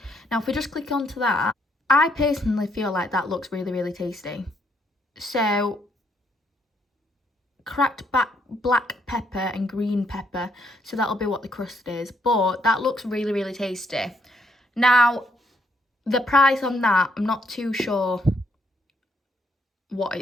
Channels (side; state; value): both; normal; correlation 0.73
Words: Now, if we just click onto that, I personally feel like that looks really, really tasty. So cracked black pepper and green pepper, so that'll be what the crust is, but that looks really, really tasty. Now, the price on that, I'm not too sure what